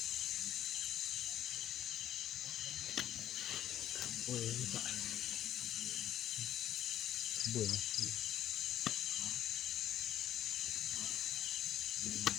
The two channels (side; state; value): right; quieter; 11.9 dB